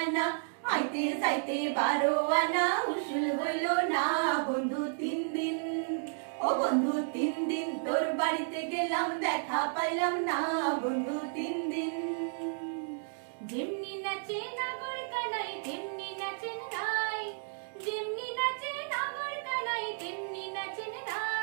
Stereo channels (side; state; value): left; silent; digital silence